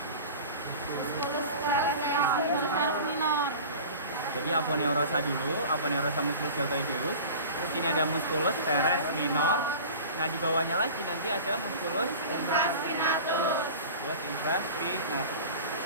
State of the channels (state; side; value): inverted; both; correlation -0.37